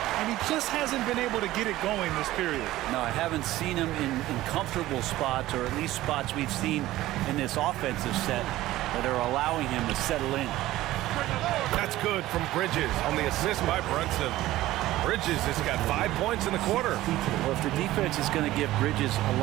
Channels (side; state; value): left; quieter; 16.0 dB